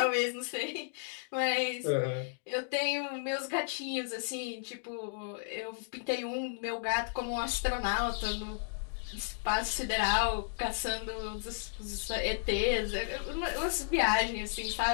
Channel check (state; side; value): silent; right; digital silence